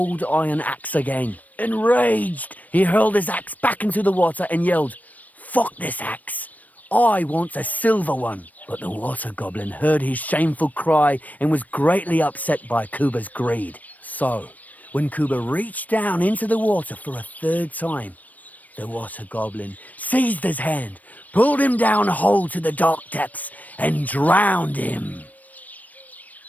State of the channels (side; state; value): right; late; 0.076 ms